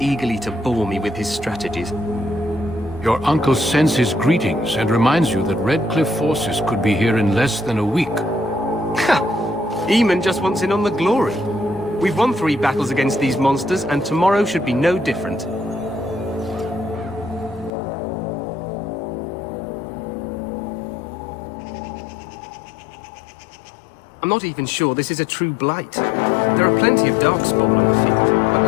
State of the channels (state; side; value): drops out; right; at 17.7 s